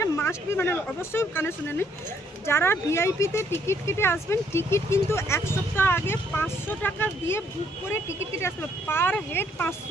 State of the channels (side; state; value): both; normal; correlation 0.68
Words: মাস্ট বি, মানে অবশ্যই কানে শুনে নিন, যারা ভিআইপিতে টিকিট কেটে আসবেন, টিকিট কিন্তু 1 সপ্তাহ আগে 500 টাকা দিয়ে বুক করে টিকিট কেটে আসতে হবে। পার হেড